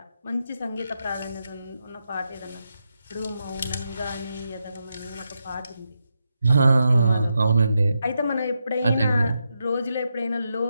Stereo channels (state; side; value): inverted; both; correlation -0.85